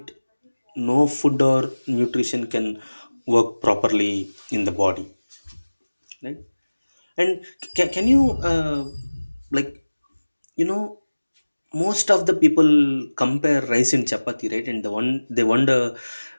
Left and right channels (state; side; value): inverted; both; correlation -1.00